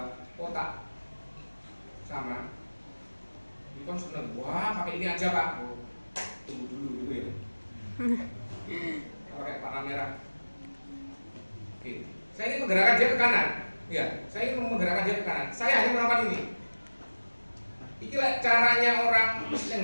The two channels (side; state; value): both; inverted; correlation -1.00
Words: kotak sama. Ini kan seneng. Wah, pakai ini aja Pak. Oh, tunggu dulu ya. Pakai warna merah. Oke, saya ingin menggerakkan dia ke kanan. Ya, saya ingin menggerakkan dia ke kanan. Saya hanya melakukan ini. Inilah caranya orang yang